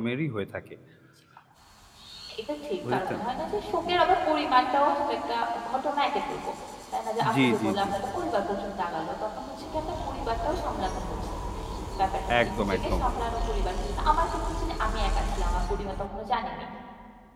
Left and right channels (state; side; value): identical; both; correlation 1.00